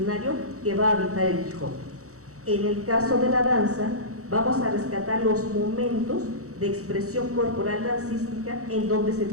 que va a habitar el Quijote. En el caso de la danza, vamos a rescatar los momentos de expresión corporal dancística en donde se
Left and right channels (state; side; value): late; left; 0.65 ms